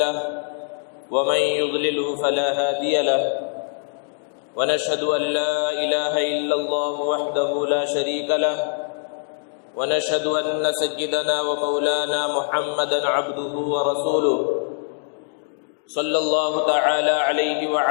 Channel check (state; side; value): silent; right; digital silence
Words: ومن يضلله فلا هادي له ونشهد أن لا إله إلا الله وحده لا شريك له ونشهد أن سيدنا ومولانا محمدا عبده ورسوله صلى الله تعالى عليه